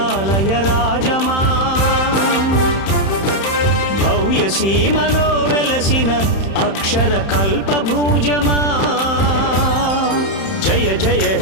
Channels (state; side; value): late; right; 31 ms